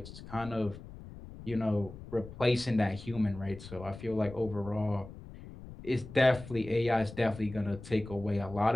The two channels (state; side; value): noise; left; rumble, 15 dB below the sound